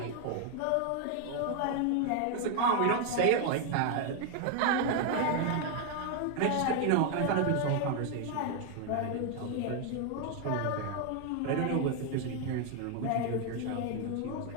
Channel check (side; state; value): both; different; correlation 0.00